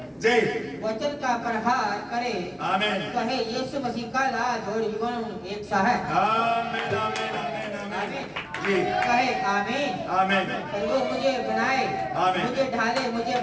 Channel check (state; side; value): identical; both; correlation 1.00